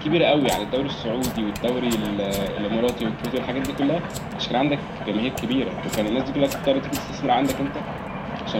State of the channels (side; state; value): both; identical; correlation 1.00